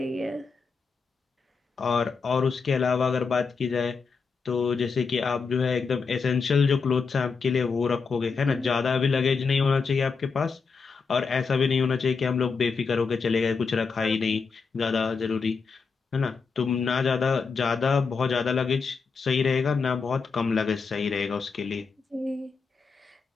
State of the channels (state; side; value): quieter; right; 5.0 dB